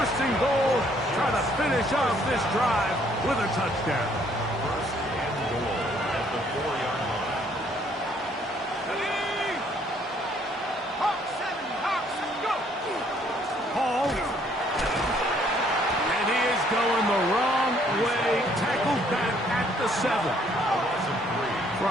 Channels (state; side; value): normal; both; correlation 0.64